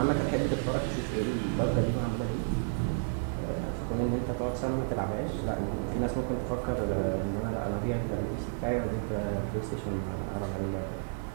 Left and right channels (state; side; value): silent; left; digital silence